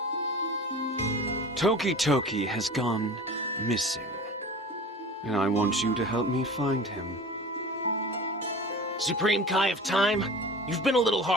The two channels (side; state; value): both; normal; correlation 0.37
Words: Toki has gone missing, and I want you to help me find him. Supreme Kai of Time, you've been a little